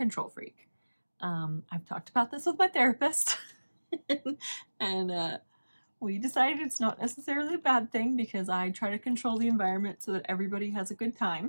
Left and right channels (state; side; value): inverted; both; correlation -1.00